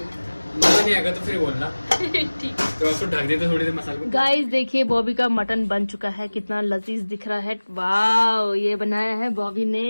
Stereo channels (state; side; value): inverted; both; correlation -1.00